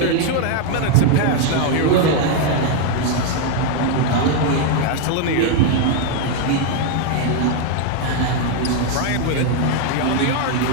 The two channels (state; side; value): different; both; correlation 0.00